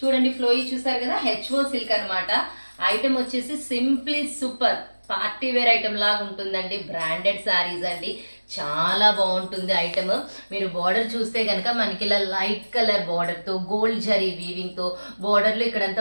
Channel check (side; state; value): both; inverted; correlation -1.00